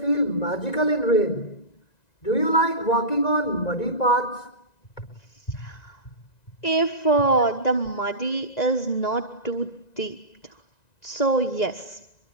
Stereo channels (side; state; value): right; late; 1.9 ms